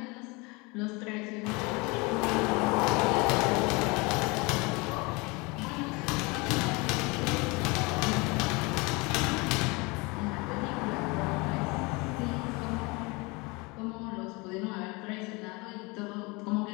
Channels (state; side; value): quieter; right; 26.6 dB